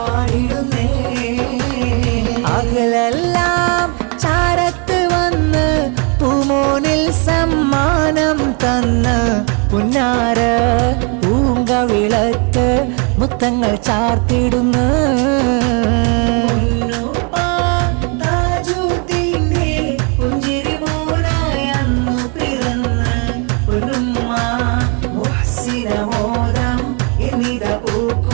അകലെല്ലാം ചാരത്ത് വന്ന് പൂമോനിൽ സമ്മാനം തന്ന് പുന്നാര പൂങ്കവിളക്ക് മുത്തങ്ങൾ ചാർത്തിടുന്നു പുഞ്ചിരി മോനായി അന്നു പിറന്ന് പൊന്നുമ്മ മുഹ്സിനമോദം എന്നിത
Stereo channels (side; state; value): left; quieter; 35.6 dB